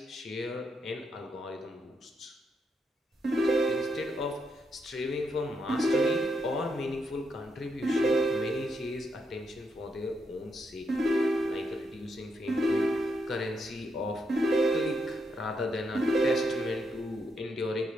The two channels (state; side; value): normal; both; correlation 0.80